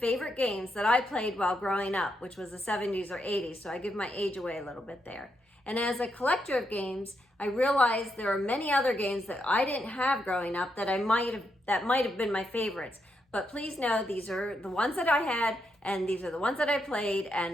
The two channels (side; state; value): both; normal; correlation 0.81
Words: games that I played while growing up, which was the 70s or 80s, so I give my age away a little bit there. And as a collector of games, I realized there are many other games that I didn't have growing up that might have been my favorites. But please know these are the ones that I had, and these are the ones that I played,